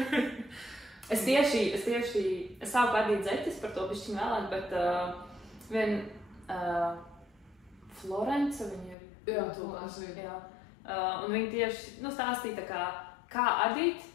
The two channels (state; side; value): drops out; right; at 9.0 s